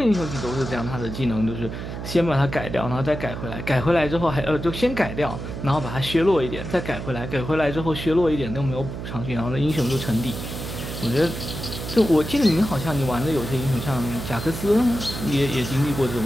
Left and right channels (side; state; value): right; noise; hum, 7 dB below the sound